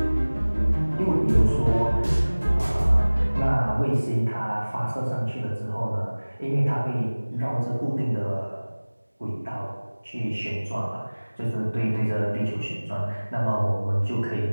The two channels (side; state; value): both; inverted; correlation -1.00